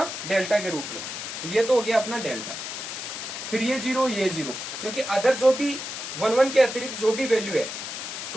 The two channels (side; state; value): left; noise; hiss, 7 dB below the sound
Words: डेल्टा के रूप में। तो ये तो हो गया अपना डेल्टा, फिर ये 0 ये 0, क्योंकि अदर जो भी 11 के अतिरिक्त जो भी वैल्यू है